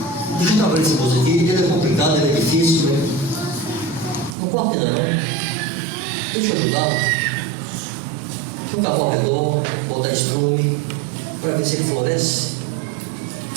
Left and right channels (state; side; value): drops out; left; at 4.4 s